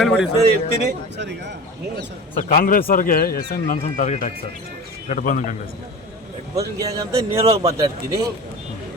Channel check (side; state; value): both; normal; correlation 0.33